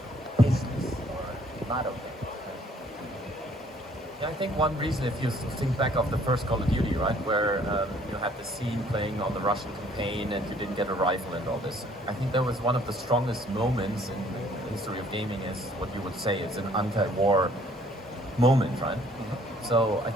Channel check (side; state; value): both; normal; correlation 0.60